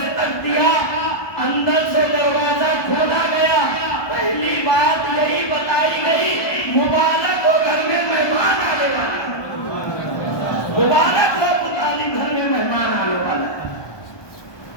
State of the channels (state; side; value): late; right; 1.2 ms